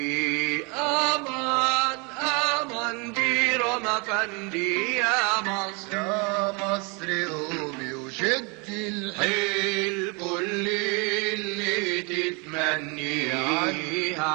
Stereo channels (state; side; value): quieter; left; 31.2 dB